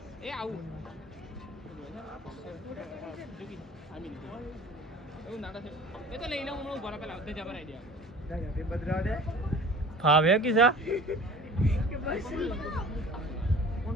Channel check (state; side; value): normal; both; correlation 0.44